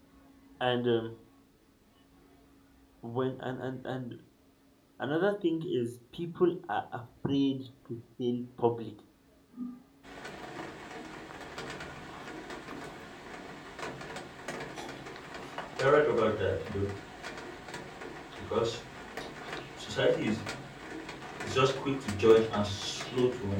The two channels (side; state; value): both; identical; correlation 1.00